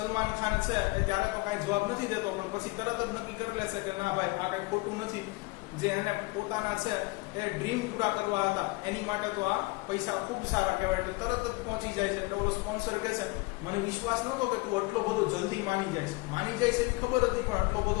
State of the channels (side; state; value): right; quieter; 24.0 dB